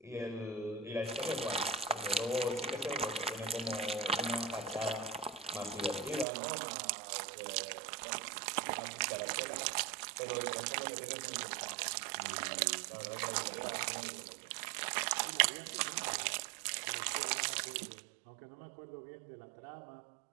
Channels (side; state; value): left; drops out; at 6.2 s